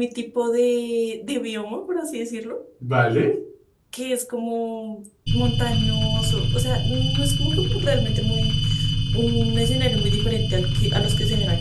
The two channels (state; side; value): identical; both; correlation 1.00